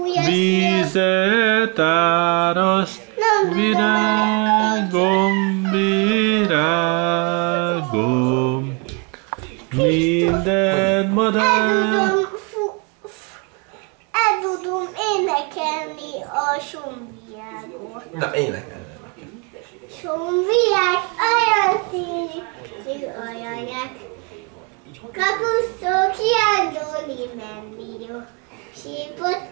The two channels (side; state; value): left; quieter; 31.8 dB